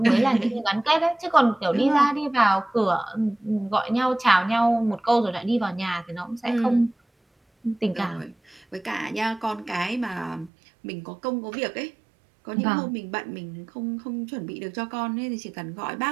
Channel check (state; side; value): drops out; left; at 10.5 s